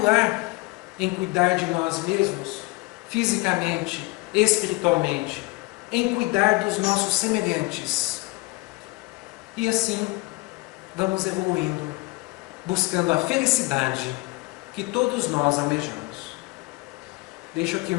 lar, em cuidar de nós mesmos, fisicamente, espiritualmente, em cuidar dos nossos semelhantes. E assim, vamos evoluindo, buscando a felicidade que todos nós almejamos. Deixo aqui o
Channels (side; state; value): right; quieter; 24.2 dB